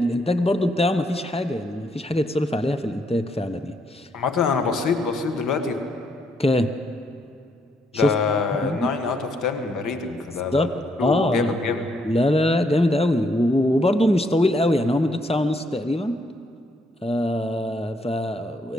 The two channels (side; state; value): both; normal; correlation 0.73